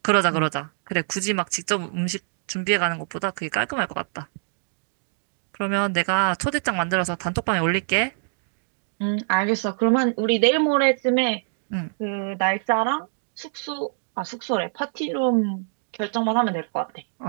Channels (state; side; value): silent; left; digital silence